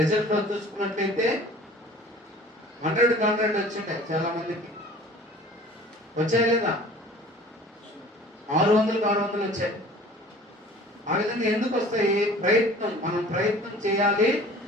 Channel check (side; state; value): both; normal; correlation 0.46